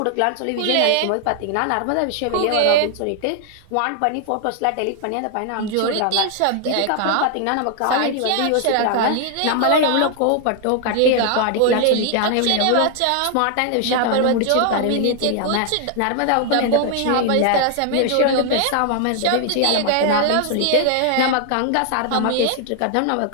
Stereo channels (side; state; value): both; different; correlation 0.00